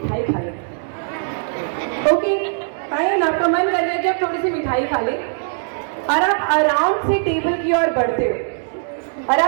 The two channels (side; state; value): left; silent; 66 dB below the other